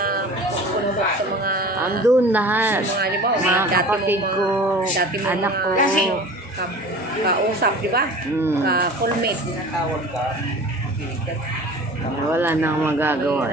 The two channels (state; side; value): normal; both; correlation 0.40